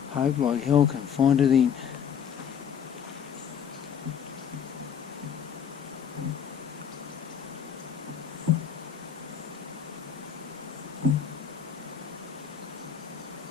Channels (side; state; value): right; quieter; 7.9 dB